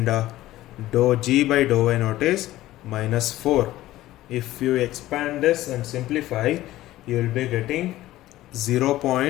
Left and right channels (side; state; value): right; quieter; 15.6 dB